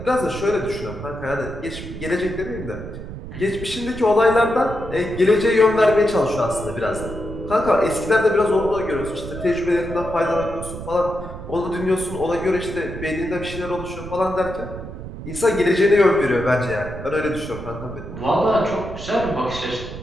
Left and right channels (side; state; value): right; noise; rumble, 10 dB below the sound